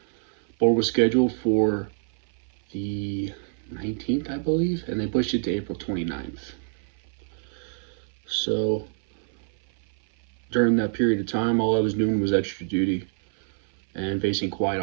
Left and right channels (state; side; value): silent; left; 57 dB below the other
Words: Board was scheduled for the 19th, I believe, and they pushed it to April 29th. So during that period of time, all I was doing was extra duty and facing quiet